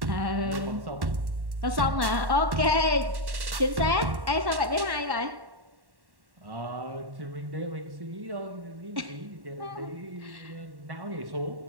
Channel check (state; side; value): late; left; 1.1 ms